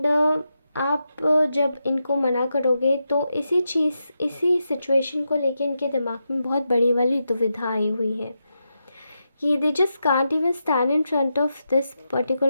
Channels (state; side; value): inverted; both; correlation -0.87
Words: आप जब इनको मना करोगे तो इसी सिचुएशन को लेके इनके दिमाग में बहुत बड़ी वाली दुविधा आई हुई है कि they just can't even stand in front of this